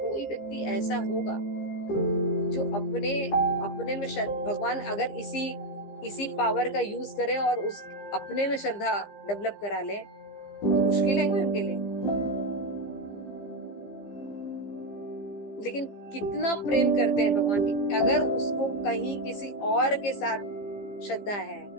कोई व्यक्ति ऐसा होगा जो अपने में भगवान अगर इसी पावर का यूज करे और उस अपने में श्रद्धा डेवलप करा ले तो मुश्किल है कोई उनके लिए। लेकिन कितना प्रेम करते हैं भगवान की, अगर उसको कहीं किसी और के साथ श्रद्धा है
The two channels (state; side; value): late; right; 15 ms